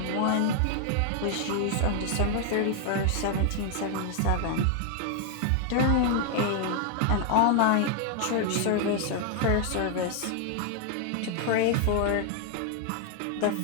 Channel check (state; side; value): different; both; correlation 0.00